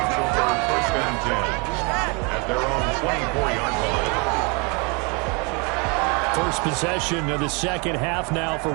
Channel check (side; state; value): left; quieter; 31.9 dB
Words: over 1st and 10 at their own 24-yard line. First possession of the second half now for